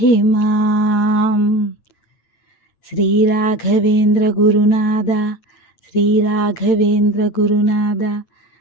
మాం. శ్రీ రాఘవేంద్ర గురునాథ, శ్రీ రాఘవేంద్ర గురునాథ,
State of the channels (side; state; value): right; late; 8.9 ms